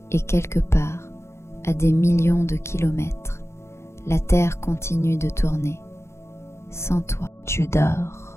et quelque part, à des millions de kilomètres, la Terre continue de tourner. Sans toi, tu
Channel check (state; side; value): late; right; 0.13 ms